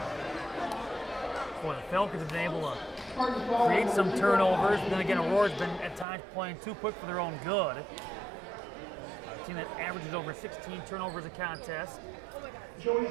Boy, the Falcons have been able to create some turnovers. Then again, Aurora's been at times playing too quick for their own good. A team that averages over 16 turnovers a contest.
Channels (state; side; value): drops out; left; at 6.1 s